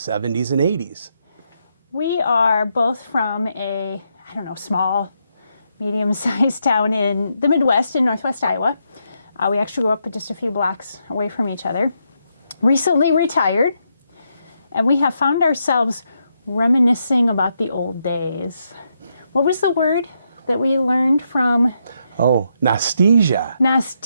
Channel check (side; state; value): both; inverted; correlation -0.80